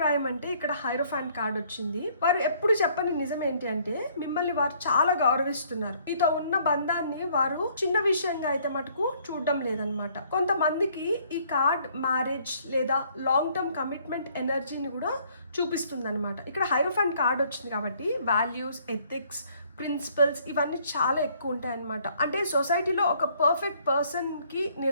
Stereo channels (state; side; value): inverted; both; correlation -0.63